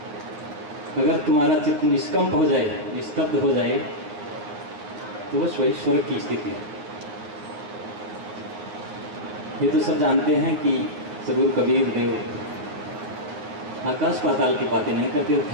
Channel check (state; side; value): late; left; 9.8 ms